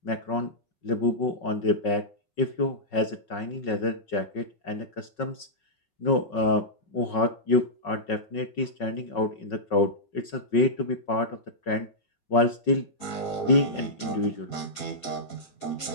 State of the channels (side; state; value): right; late; 5.4 ms